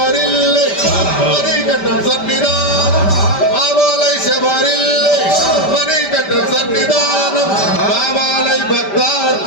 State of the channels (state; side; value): late; right; 5.1 ms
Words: మణికంఠం సన్నిధానం మామలై శబరిల్లే మణికంఠం సన్నిధానం మామలై